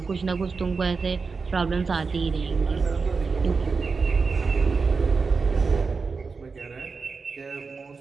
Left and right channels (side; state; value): left; quieter; 4.7 dB